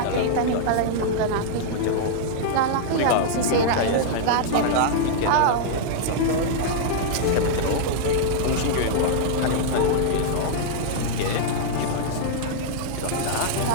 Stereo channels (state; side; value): different; both; correlation -0.01